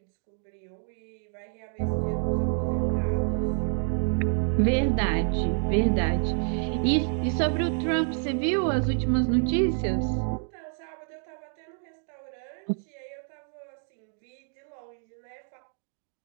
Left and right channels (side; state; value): left; silent; 59 dB below the other